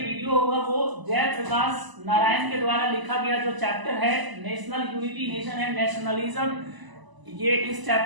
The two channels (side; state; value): left; late; 1.0 ms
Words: होगा वो जयप्रकाश नारायण के द्वारा लिखा गया जो चैप्टर है national unity, nation and nationalism, ये इस